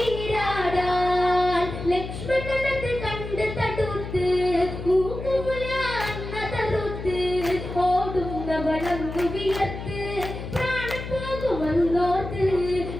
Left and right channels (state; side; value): noise; left; hum, 8 dB below the sound